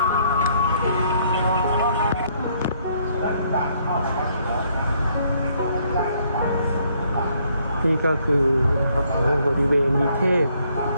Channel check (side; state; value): both; inverted; correlation -0.68